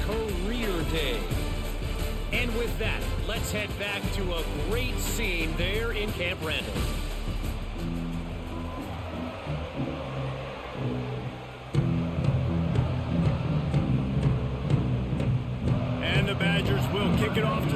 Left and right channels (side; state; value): both; identical; correlation 1.00